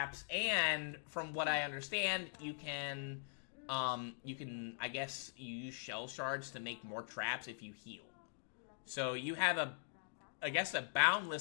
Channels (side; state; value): right; silent; digital silence